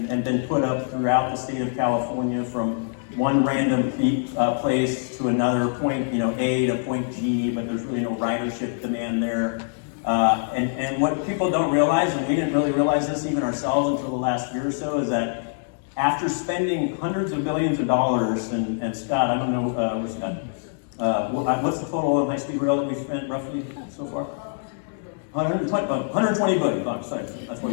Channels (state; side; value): silent; right; digital silence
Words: put up throughout the state of California, from one random place to another point, A to point G, but there's really no ridership demand there. And what people don't realize, and we didn't really realize this even ourselves until the last year or so, is that after spending hundreds of billions of dollars, and Scott, I don't know, where's Scott? What's the total of high-speed rail that we've spent roughly so far? 120 billion bucks. Sorry, that's what